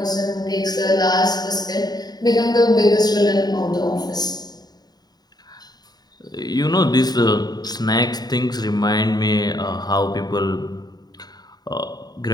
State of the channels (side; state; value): right; late; 0.19 ms